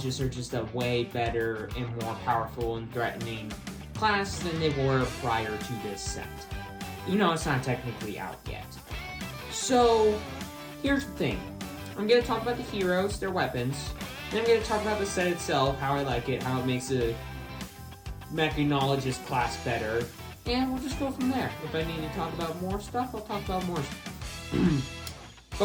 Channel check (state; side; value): identical; both; correlation 1.00